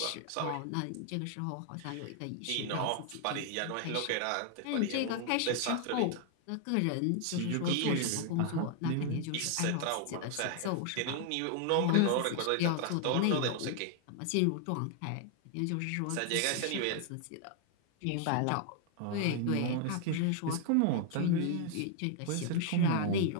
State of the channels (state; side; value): different; both; correlation 0.00